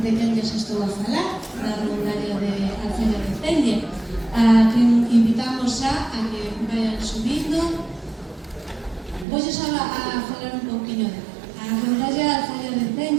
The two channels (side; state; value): left; drops out; at 9.2 s